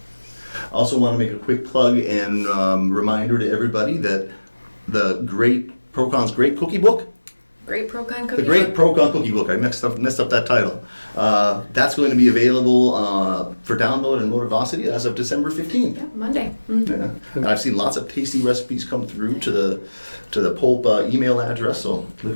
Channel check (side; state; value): both; inverted; correlation -1.00